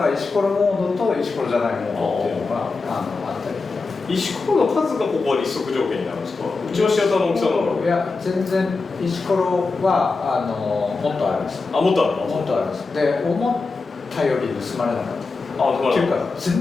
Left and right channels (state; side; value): quieter; right; 4.0 dB